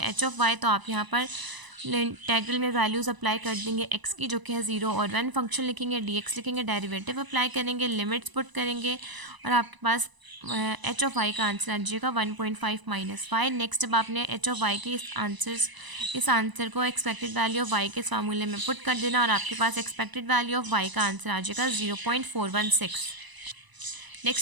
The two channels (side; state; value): left; late; 1.0 ms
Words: ऑफ वाई, तो आप यहाँ पर इंटीग्रल में वैल्यूज़ अप्लाई कर देंगे एक्स की जो कि है 0 और 1, फंक्शन लिखेंगे, डी एक्स लिखेंगे, डेरिवेटिव अप्लाई करेंगे, लिमिट्स पुट करेंगे और आपके पास एच ऑफ वाई का आंसर आ जाएगा 1.5 माइनस वाई। नेक्स्ट, अब आपने एच ऑफ वाई के इस आंसर को एक्सपेक्टेड वैल्यू ऑफ वाई के इस फार्मूले में पुट कर देना और आपके पास एक्सपेक्टेड वैल्यू ऑफ वाई का आंसर आ जाएगा 0.416।